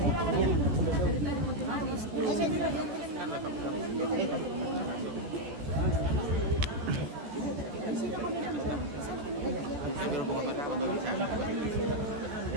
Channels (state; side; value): late; left; 14 ms